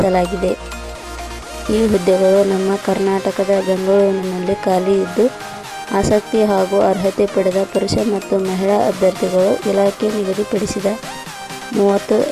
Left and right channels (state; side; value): identical; both; correlation 1.00